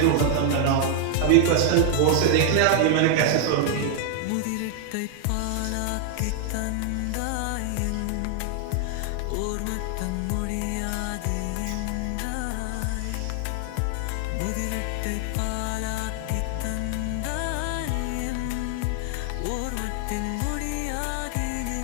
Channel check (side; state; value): both; different; correlation 0.00